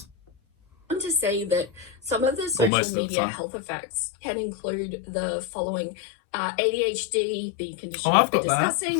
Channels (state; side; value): drops out; right; at 2.7 s